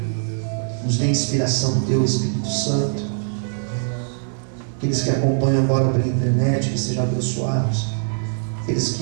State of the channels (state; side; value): silent; left; digital silence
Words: Nos dê inspiração do Teu Espírito Santo. Aqueles que acompanham agora pela internet, que sejam abençoados. Aqueles